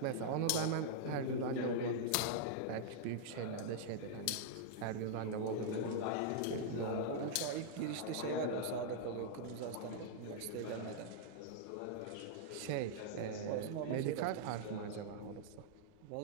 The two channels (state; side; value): different; both; correlation -0.01